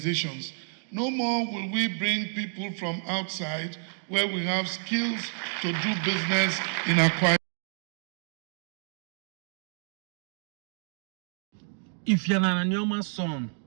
No more will we bring people from outside where we have skills to do business in Akwa Ibom. If you're an Anioma son,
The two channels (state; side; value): silent; left; 58 dB below the other